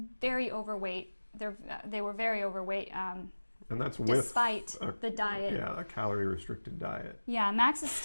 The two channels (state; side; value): inverted; both; correlation -1.00